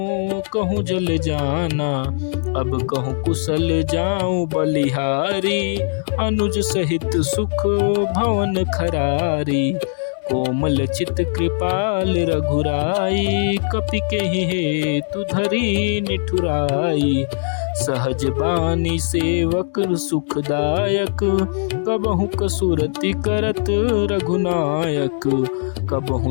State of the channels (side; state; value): right; silent; digital silence